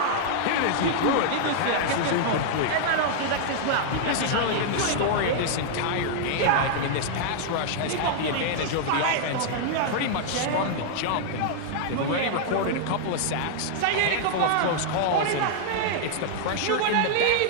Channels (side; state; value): both; different; correlation -0.01